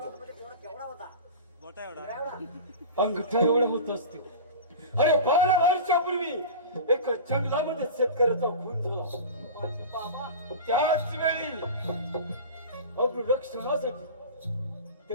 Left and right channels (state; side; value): inverted; both; correlation -0.32